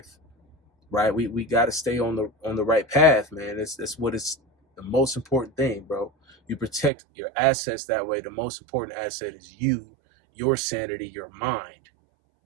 right? We got to stay on the right path, man. That's what is the most important thing, bro. You protect your assets that way. The most important asset is you, your sanity, your mind.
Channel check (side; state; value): left; drops out; at 6.9 s